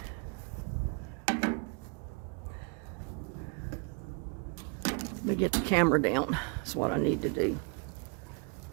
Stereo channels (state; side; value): quieter; left; 34.5 dB